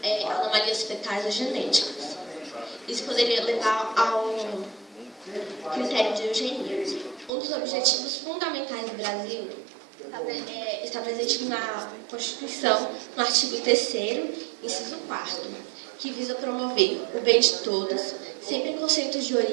anomalias fetais ou genéticas. Isso poderia levar ao critério de eugenia. Um dos objetivos fundamentais do Brasil está presente na Constituição, no artigo 3º, inciso 4º, que visa promover o bem de todos, sem preconceitos de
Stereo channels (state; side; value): drops out; left; at 7.3 s